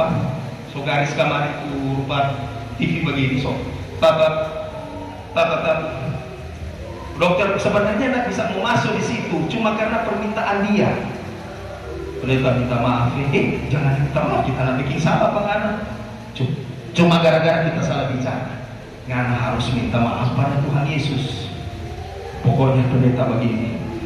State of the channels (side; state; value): both; identical; correlation 1.00